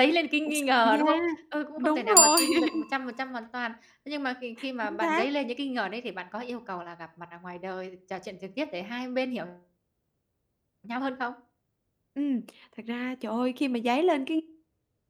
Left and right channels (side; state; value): both; identical; correlation 1.00